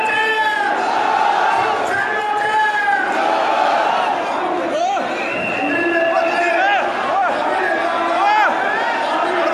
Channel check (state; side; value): identical; both; correlation 1.00